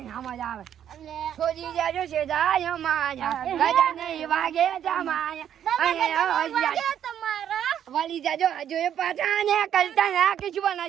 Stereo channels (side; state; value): left; quieter; 9.8 dB